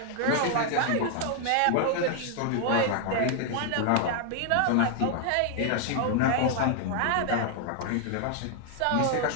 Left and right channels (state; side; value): different; both; correlation 0.00